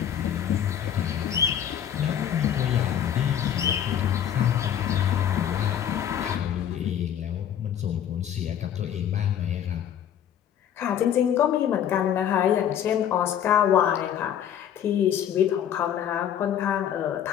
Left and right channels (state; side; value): quieter; right; 9.7 dB